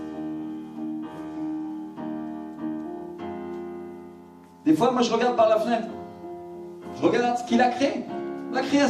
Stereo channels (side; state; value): both; identical; correlation 1.00